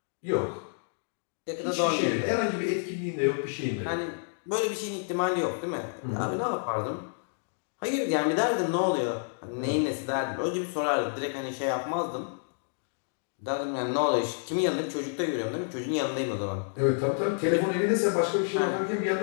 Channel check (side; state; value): right; silent; digital silence